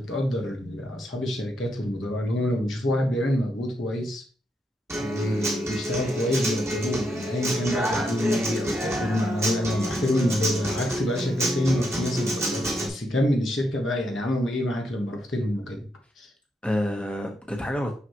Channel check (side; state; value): both; normal; correlation 0.80